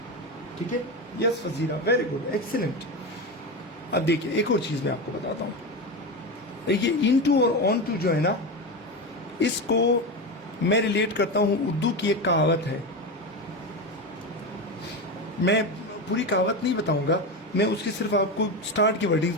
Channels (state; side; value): normal; both; correlation 0.18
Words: ठीक है, yes Fazira, very good, excellent. अब देखिए एक और चीज मैं आपको बताता हूं, देखिए इनटू और ऑन टू जो है ना, इसको मैं रिलेट करता हूं, उर्दू की एक कहावत है, मैं पूरी कहावत नहीं बताऊंगा, मैं उसकी सिर्फ आपको स्टार्ट की वर्डिंग्स